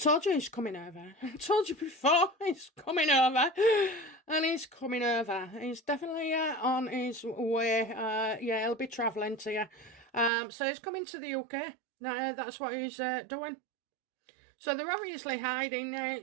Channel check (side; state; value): left; drops out; at 10.3 s